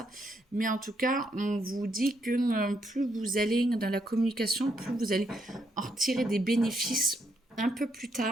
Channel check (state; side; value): normal; both; correlation 0.76